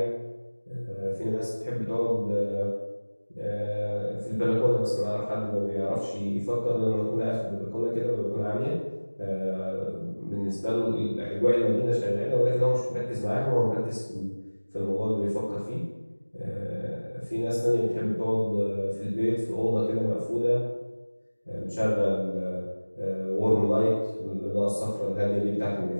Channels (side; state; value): both; inverted; correlation -1.00